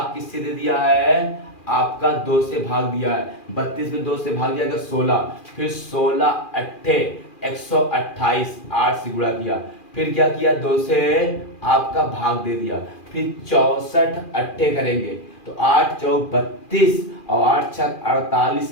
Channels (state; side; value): late; right; 2.4 ms